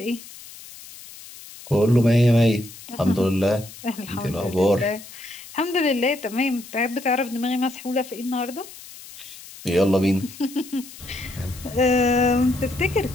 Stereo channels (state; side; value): noise; left; hiss, 17 dB below the sound